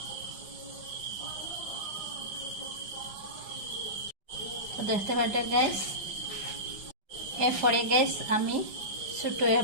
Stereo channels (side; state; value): left; late; 5.0 ms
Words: তো দেখতে পাচ্ছেন গাইস। এরপরে গাইস আমি ছোট এক